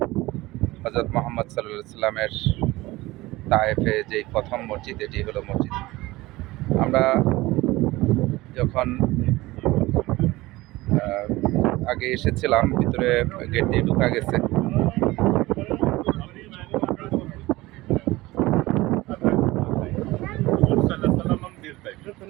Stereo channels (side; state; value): left; quieter; 19.6 dB